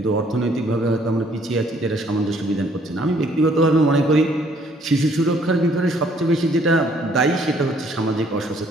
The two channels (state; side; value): normal; both; correlation 0.63